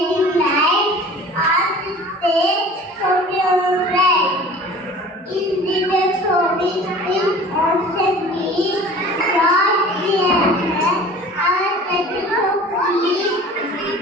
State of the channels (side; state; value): both; normal; correlation 0.43